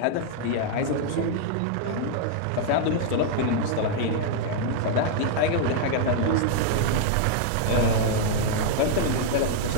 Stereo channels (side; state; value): both; different; correlation -0.01